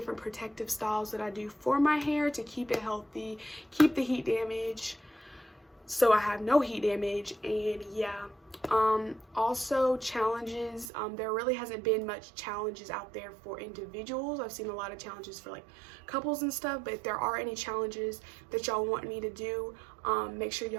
protective styles that I do for my hair to keep it healthy, keep the heat damage, so I have no heat damage. And yeah, also challenges. There really hasn't been much challenges out there for individuals. I've seen a lot of challenges for like couples and stuff, but if there are any challenges that y'all want me to do, make sure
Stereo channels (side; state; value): left; drops out; at 10.9 s